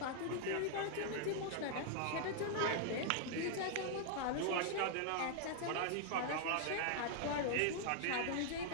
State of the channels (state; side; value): different; both; correlation 0.00